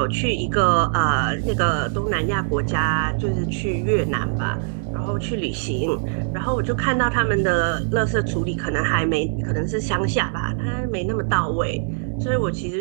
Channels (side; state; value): left; silent; digital silence